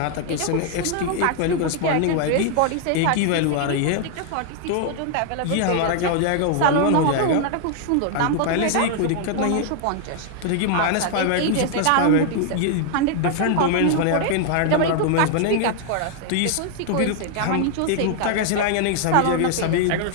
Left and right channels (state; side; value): different; both; correlation 0.00